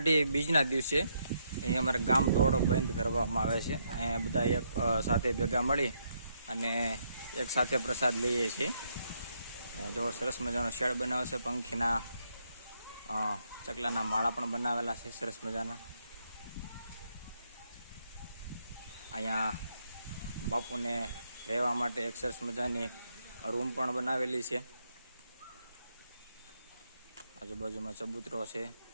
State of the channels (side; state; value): both; inverted; correlation -0.76